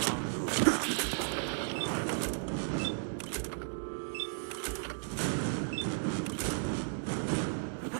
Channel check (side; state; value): left; silent; digital silence